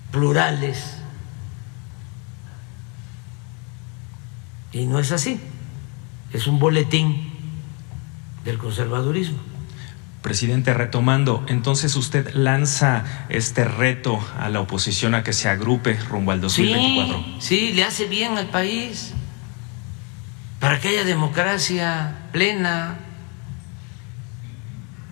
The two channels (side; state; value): right; quieter; 33.9 dB